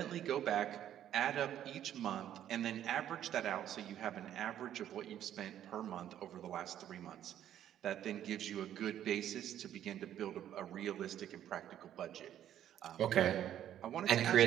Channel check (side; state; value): left; quieter; 11.0 dB